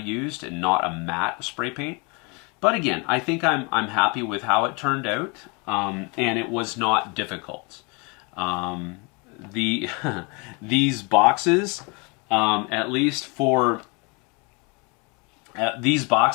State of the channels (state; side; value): quieter; right; 31.1 dB